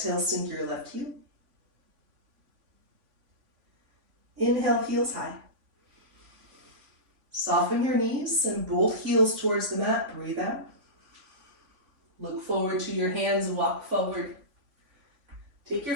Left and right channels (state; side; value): late; left; 3.5 ms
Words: sink your left heel. Inhale, heels high. Soften your knees, send both heels towards the mat, breathe out. Look forward to your hands, walk forward. Take your